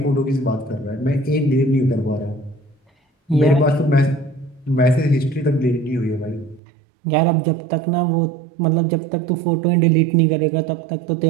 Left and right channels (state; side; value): drops out; left; at 6.6 s